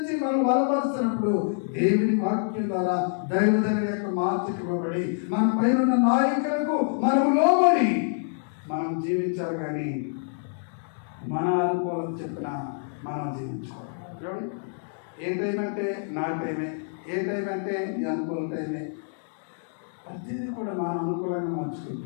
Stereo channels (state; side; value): silent; right; digital silence